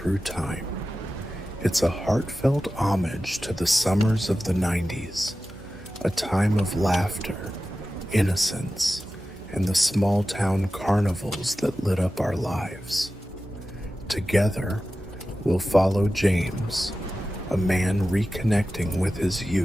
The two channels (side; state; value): right; noise; hum, 20 dB below the sound